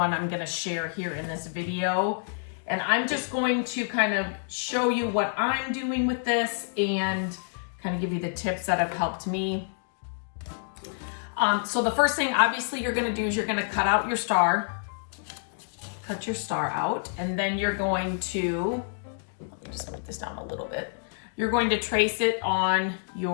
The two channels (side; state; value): right; silent; digital silence